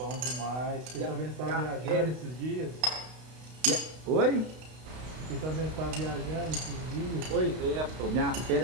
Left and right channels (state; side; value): late; left; 32 ms